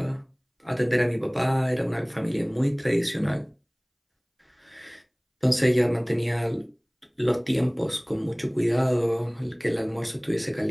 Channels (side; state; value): both; identical; correlation 1.00